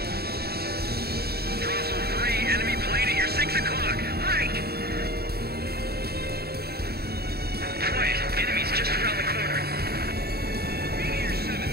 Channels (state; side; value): late; left; 0.46 ms